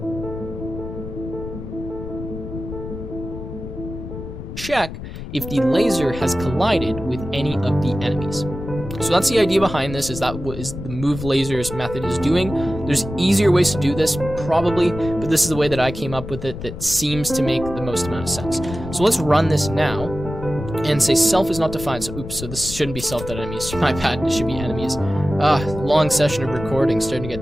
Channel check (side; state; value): left; noise; rumble, 9 dB below the sound